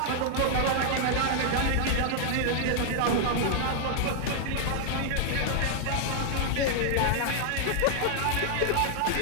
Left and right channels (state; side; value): different; both; correlation 0.00